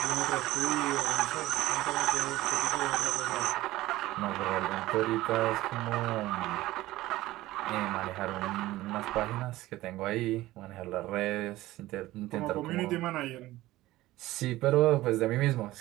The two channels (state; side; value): quieter; left; 16.9 dB